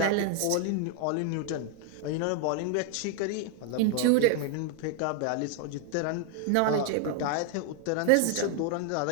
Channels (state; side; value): different; both; correlation 0.00